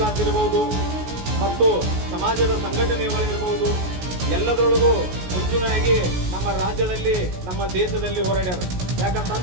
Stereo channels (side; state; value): left; late; 16 ms